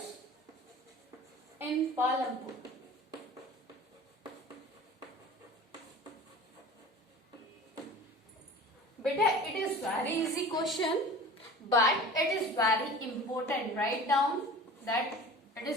Palanpur? Beta, it is very easy question, but it is very important. Write down that it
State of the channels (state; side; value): normal; both; correlation 0.40